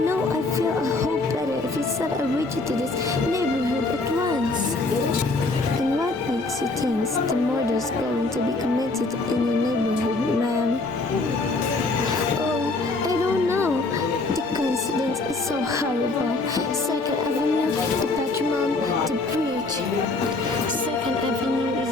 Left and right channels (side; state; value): right; quieter; 3.4 dB